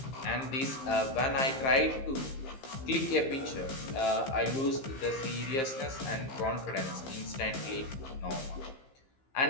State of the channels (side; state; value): right; late; 15 ms